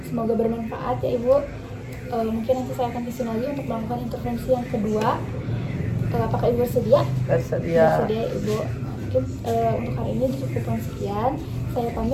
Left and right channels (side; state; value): both; identical; correlation 1.00